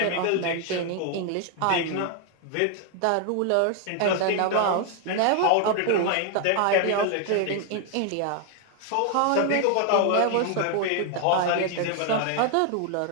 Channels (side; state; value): both; different; correlation 0.00